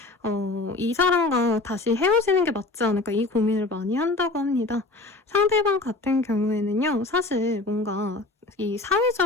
이 사람과 다시 헤어지는 게 맞지 않을까 이 고민을 많이 한다고 합니다. 상대방 같은 경우에는요. 사실 뭔가 이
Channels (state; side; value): quieter; right; 3.2 dB